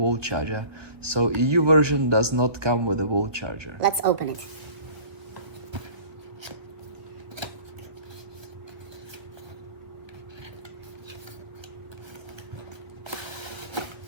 charger. So EU version does not come with a wall charger. Let's open it.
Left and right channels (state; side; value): late; left; 1.2 ms